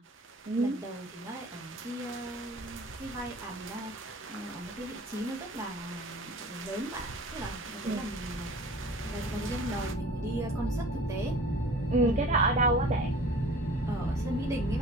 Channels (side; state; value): both; normal; correlation 0.45